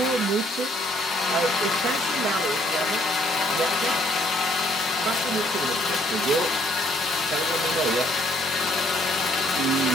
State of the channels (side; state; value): both; normal; correlation 0.65